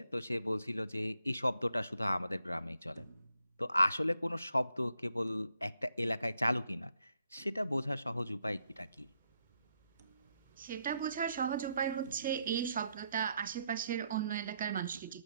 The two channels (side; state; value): both; inverted; correlation -0.78